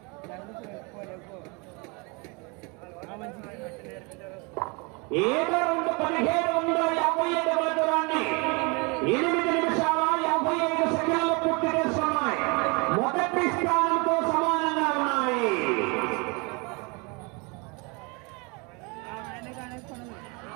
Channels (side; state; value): left; quieter; 30.1 dB